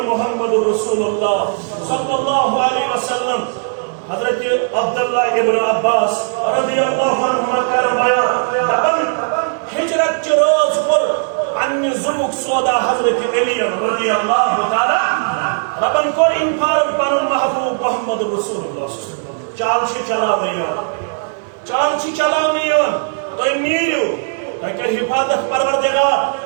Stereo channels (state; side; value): silent; left; 61 dB below the other